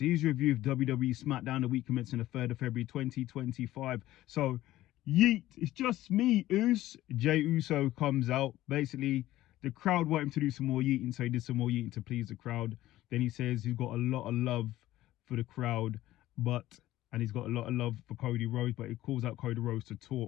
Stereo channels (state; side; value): quieter; right; 15.3 dB